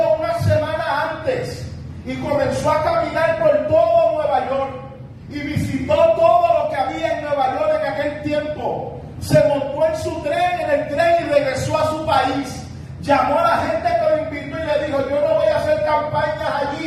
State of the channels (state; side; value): identical; both; correlation 1.00